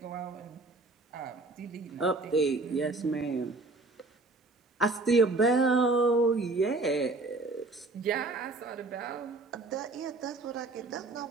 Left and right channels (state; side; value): quieter; left; 3.3 dB